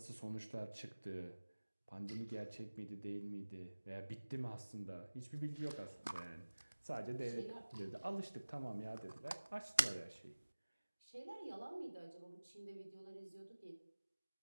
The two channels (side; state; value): both; inverted; correlation -1.00